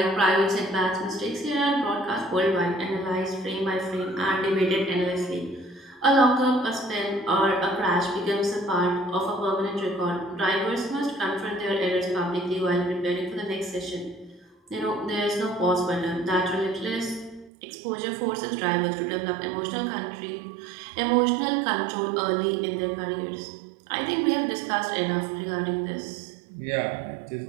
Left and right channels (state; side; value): drops out; left; at 17.5 s